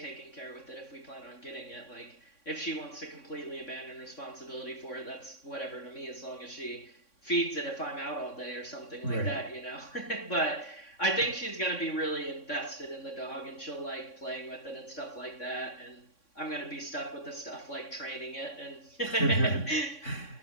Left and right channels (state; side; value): late; right; 3.6 ms